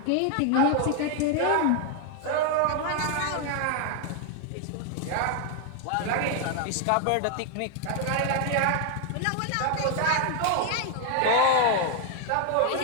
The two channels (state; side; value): different; both; correlation 0.00